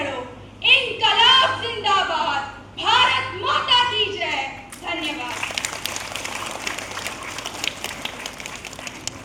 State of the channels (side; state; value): both; identical; correlation 1.00